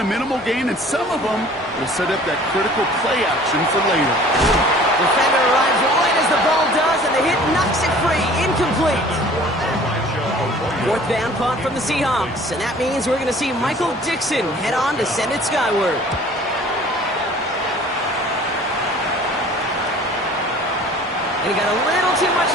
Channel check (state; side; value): normal; both; correlation 0.49